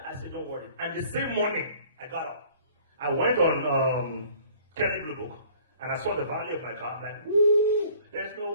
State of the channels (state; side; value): inverted; both; correlation -0.53